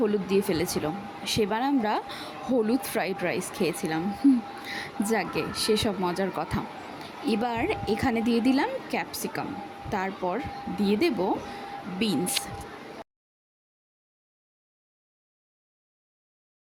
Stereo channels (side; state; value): both; identical; correlation 1.00